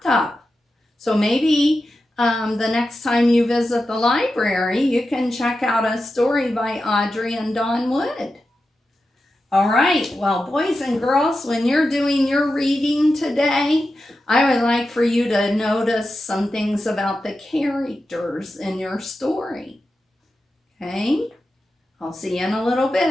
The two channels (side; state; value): both; normal; correlation 0.91